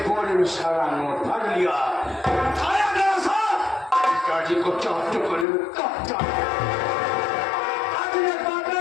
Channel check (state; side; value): drops out; right; at 5.5 s